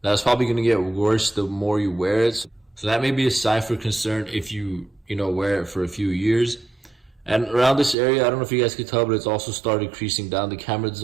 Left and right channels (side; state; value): left; drops out; at 8.0 s